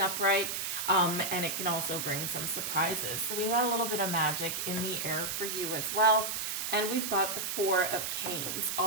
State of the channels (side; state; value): right; noise; hiss, 2 dB below the sound